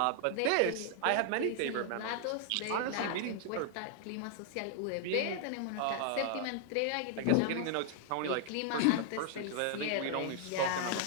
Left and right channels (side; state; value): both; different; correlation 0.00